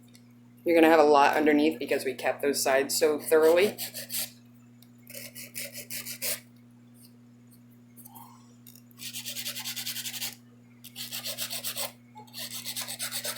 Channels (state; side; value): identical; both; correlation 1.00